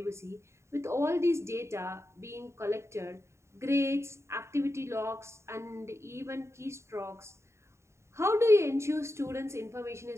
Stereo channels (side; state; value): left; late; 0.13 ms